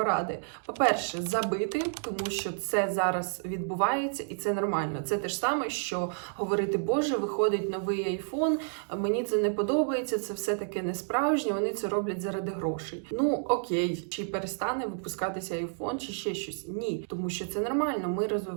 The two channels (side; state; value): left; silent; digital silence